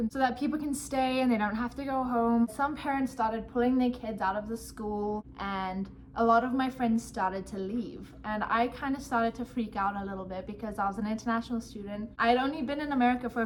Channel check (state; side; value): identical; both; correlation 1.00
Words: so that people can stay and they don't have to go home. Some parents started pulling their kids out of the school, and a lot of my friends started to leave, and I kind of started to freak out a little bit because I was an international student. I had only been in America for